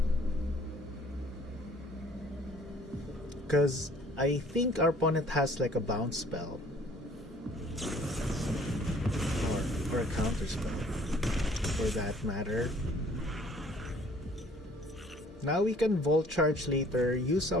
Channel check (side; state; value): both; normal; correlation 0.57